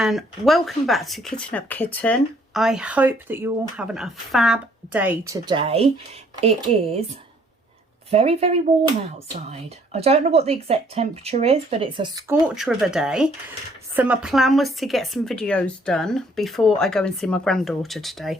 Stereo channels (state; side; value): normal; both; correlation 0.63